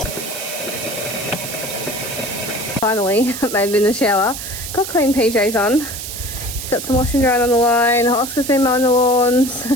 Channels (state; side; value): noise; right; hiss, 8 dB below the sound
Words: Finally made it in the shower. Got clean PJs on. Got some washing drying on the line. Oscar's been mowing the lawns.